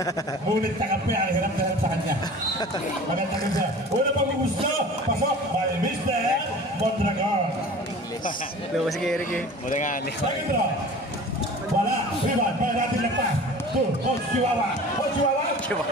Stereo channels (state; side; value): normal; both; correlation 0.41